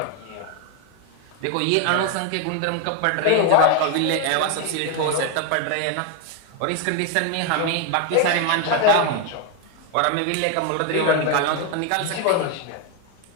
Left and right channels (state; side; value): different; both; correlation 0.01